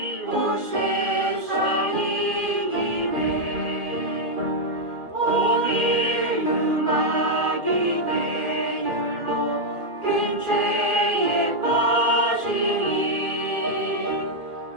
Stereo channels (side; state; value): left; late; 2.4 ms